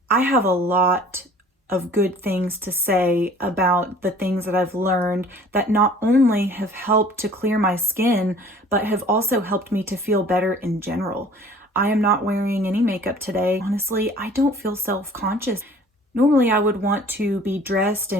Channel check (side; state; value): both; normal; correlation 0.50